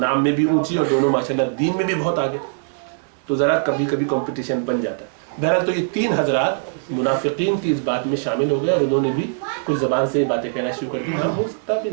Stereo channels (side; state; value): left; silent; digital silence